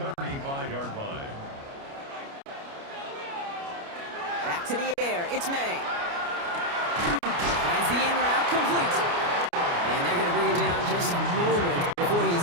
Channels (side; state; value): left; late; 29 ms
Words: 35-yard line. Back to the air. It's May. Finds the in route complete. And they're going to bring him down just a moment before he's